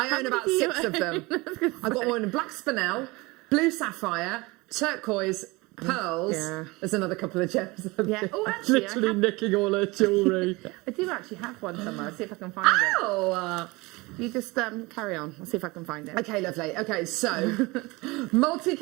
own about 6 of them. I've got one in black spinel, blue sapphire, turquoise, pearls. Yeah. There's another couple of gems. Yeah. Oh, actually, literally nicking all her jewellery. I do actually have one somewhere. I'll see if I can find it. Oh! You just carry on. I'll see if I can find it. Okay, lovely. Okay, so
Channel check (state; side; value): quieter; left; 23.5 dB